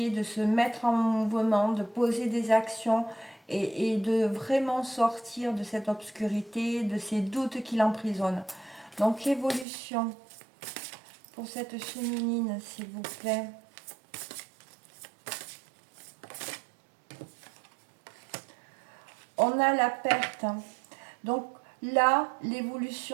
de se mettre en mouvement, de poser des actions et de vraiment sortir de cette obscurité, de ces doutes qui l'emprisonnent. Donc l'évolution pour cette féminine, s'il vous plaît. On a la perte. Donc là,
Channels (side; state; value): left; drops out; at 9.7 s